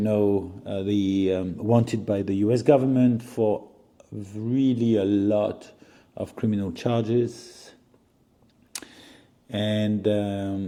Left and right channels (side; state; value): both; identical; correlation 1.00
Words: wanted by the U.S. government for really a lot of criminal charges, and